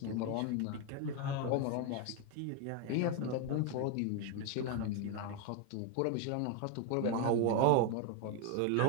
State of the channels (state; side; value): different; both; correlation 0.01